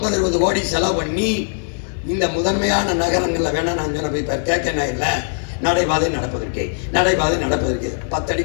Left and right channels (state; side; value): silent; right; digital silence